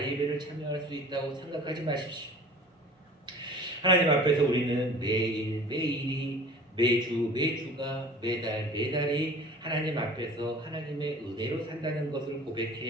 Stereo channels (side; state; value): both; normal; correlation 0.44